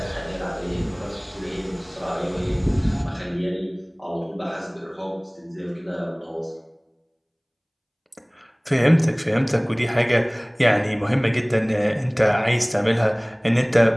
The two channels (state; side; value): identical; both; correlation 1.00